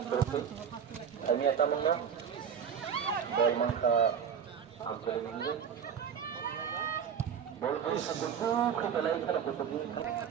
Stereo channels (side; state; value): left; quieter; 7.6 dB